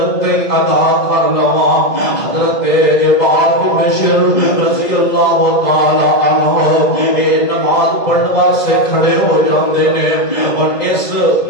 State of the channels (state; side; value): late; right; 1.7 ms